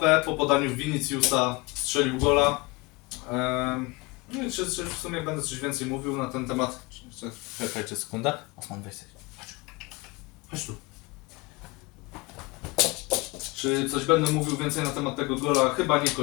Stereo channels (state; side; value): quieter; right; 25.5 dB